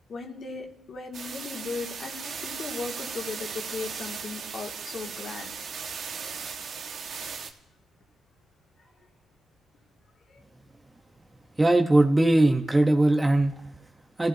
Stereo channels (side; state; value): both; normal; correlation 0.96